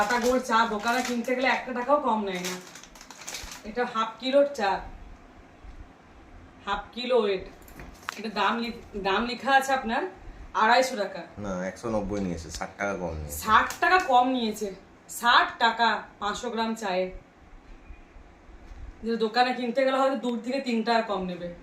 গোল্ড চা দোকানে কিনতে গেলে 1 টাকাও কম নেয় না। এটা 1/2 কিলোর চা, 1/2 কিলো ওয়েট। এটা দাম লেখা আছে আপনার 250 টাকা। না 190 নিয়েছে, 60 টাকা কম নিয়েছে। 60 টাকা কম নিয়েছে, 60 টাকা 500 গ্রাম চায়ে। যে দোকানে কিনতে গেলে হয়তো 2 থেকে 3 টাকা কম নেবে,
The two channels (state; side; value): identical; both; correlation 1.00